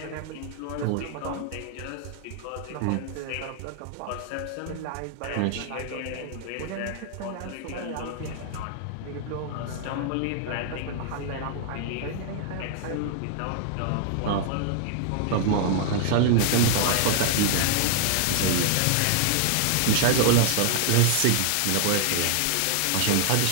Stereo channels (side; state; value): both; different; correlation -0.01